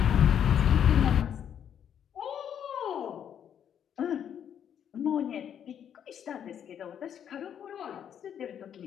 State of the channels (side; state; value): right; quieter; 9.0 dB